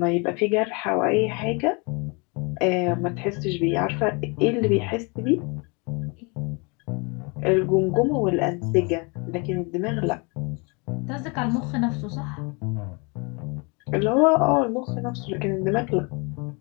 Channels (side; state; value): right; quieter; 31.0 dB